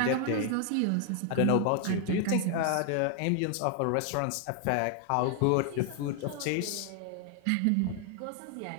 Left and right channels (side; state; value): both; different; correlation 0.00